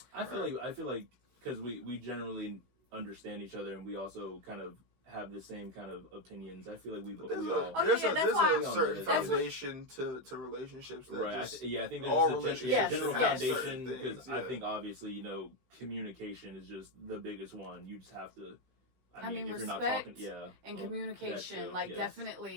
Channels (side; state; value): left; late; 16 ms